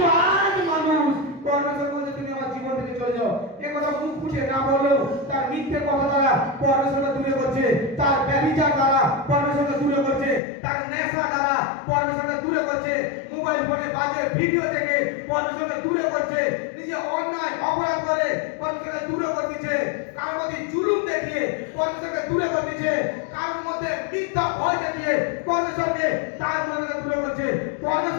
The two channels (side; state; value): right; drops out; at 10.4 s